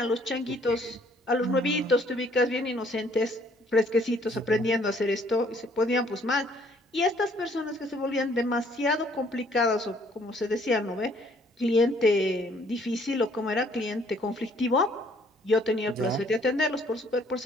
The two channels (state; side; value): normal; both; correlation 0.62